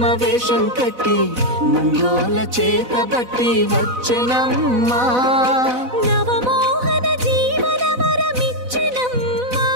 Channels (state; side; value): late; left; 4.0 ms